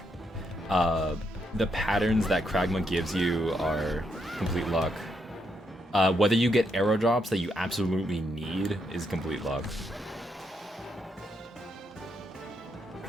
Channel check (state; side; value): normal; both; correlation 0.78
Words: The patterns that Kragma gives you are complete luck. Whether you get arrow drops that you absolutely need is complete luck.